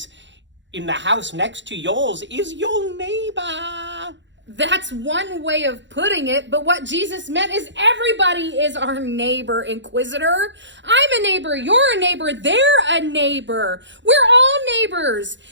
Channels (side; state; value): left; late; 0.53 ms